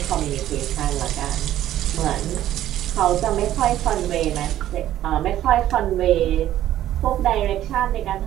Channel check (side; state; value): left; quieter; 12.7 dB